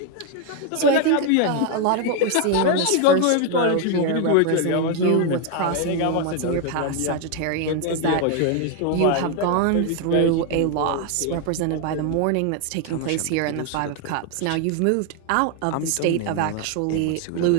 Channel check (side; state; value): both; different; correlation 0.01